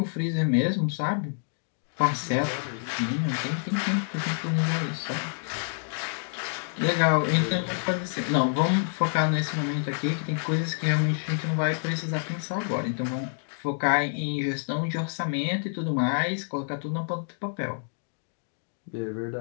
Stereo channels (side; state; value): right; silent; digital silence